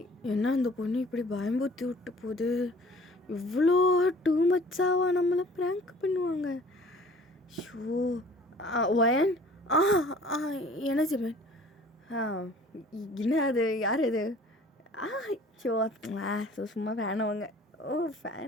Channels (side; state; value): both; normal; correlation 0.50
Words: என்ன இந்த பொண்ணு இப்படி பயம்புத்தி விட்டு போகுது? இவ்வளோ டூ மச்சாவா நம்மளை ப்ராங்க் பண்ணுவாங்க? Show wine. என்ன ஜிமின்? என்ன அது? யார் அது? ஷோ சும்மா ஃபேனவங்க. ஓ